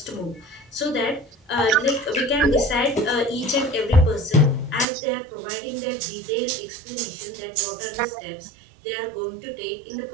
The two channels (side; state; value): left; drops out; at 4.9 s